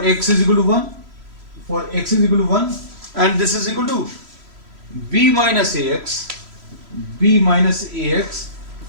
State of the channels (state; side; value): late; left; 3.0 ms